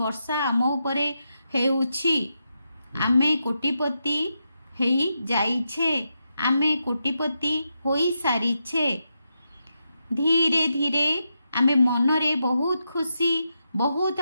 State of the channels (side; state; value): both; inverted; correlation -0.85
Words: वर्षा आम उपरे हेउछि आमे कोटिपति हेई जाइछे आमे कोटिपति होई सारिछे धीरे धीरे आमे मनरे बहुत खुशी बहुत